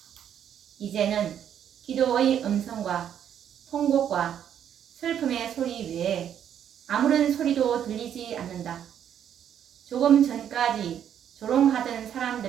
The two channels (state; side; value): quieter; left; 9.4 dB